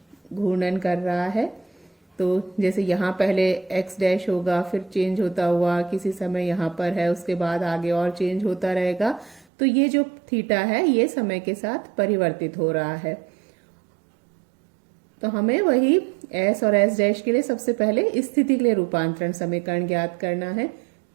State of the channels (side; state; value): left; drops out; at 9.5 s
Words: घूर्णन कर रहा है। तो जैसे यहाँ पहले x डैश होगा, फिर चेंज होता हुआ किसी समय यहाँ पर है, उसके बाद आगे और चेंज होता रहेगा। तो ये जो थीटा है ये समय के साथ परिवर्तित हो रहा है। तो हमें वही s और s डैश के लिए सबसे पहले स्थिति के लिए रूपांतरण समीकरण ज्ञात करना है।